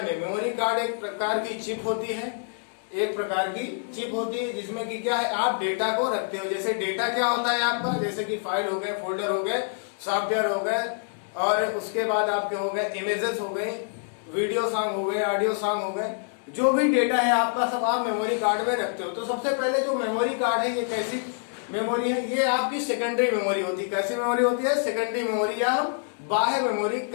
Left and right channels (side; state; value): right; silent; digital silence